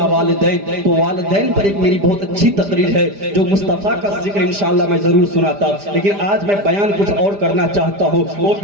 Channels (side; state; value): left; late; 5.0 ms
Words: والدین تو والدین پر ایک میری بہت اچھی تقریر ہے جو مصطفیٰ کا ذکر انشاءاللہ میں ضرور سناتا, لیکن آج میں بیان کچھ اور کرنا چاہتا ہوں. وہ